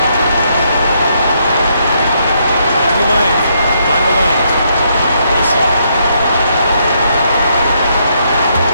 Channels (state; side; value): inverted; both; correlation -0.75